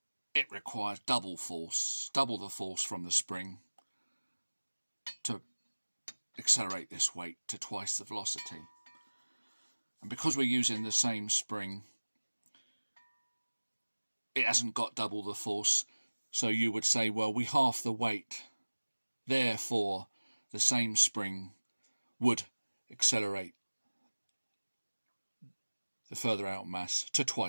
it requires double force, double the force from the spring to accelerate this weight to twice the velocity. And because we're using the same spring, it hasn't got double the force. So you would say, well, we half the weight. Therefore, the same spring would accelerate the further out mass to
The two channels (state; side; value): inverted; both; correlation -1.00